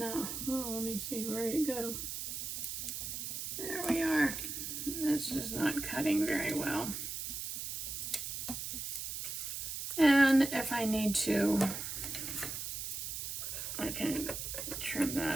Oh, let me see, where did it go? There we are. It's just not cutting very well. And if I need to, I can trim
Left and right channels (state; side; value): noise; right; hiss, 5 dB below the sound